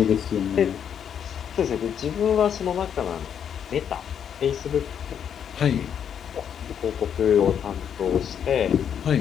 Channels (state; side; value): quieter; right; 8.3 dB